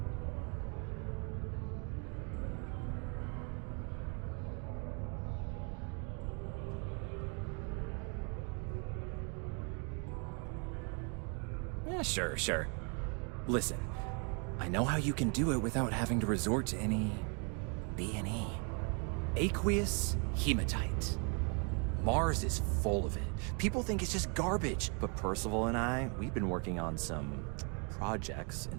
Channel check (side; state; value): left; quieter; 36.7 dB